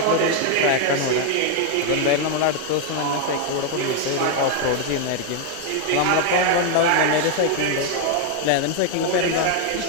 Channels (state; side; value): different; both; correlation 0.01